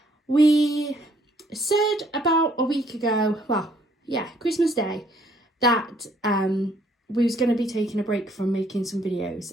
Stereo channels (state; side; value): normal; both; correlation 0.65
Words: we said about a week ago, Christmas Day, that we was going to be taking a break from making some videos,